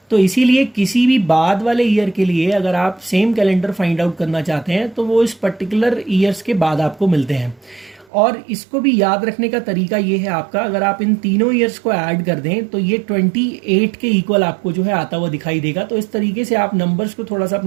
तो इसीलिए किसी भी बाद वाले ईयर के लिए अगर आप सेम कैलेंडर फाइंड आउट करना चाहते हैं तो वो इस पर्टिकुलर ईयर्स के बाद आपको मिलते हैं। और इसको भी याद रखने का तरीका ये है आपका, अगर आप इन तीनों ईयर्स को ऐड कर दें तो ये 28 के इक्वल आपको जो है आता हुआ दिखाई देगा। तो इस तरीके से आप नंबर्स को थोड़ा सा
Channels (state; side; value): drops out; left; at 8.1 s